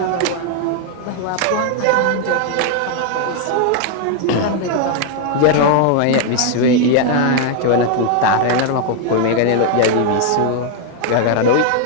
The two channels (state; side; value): different; both; correlation 0.00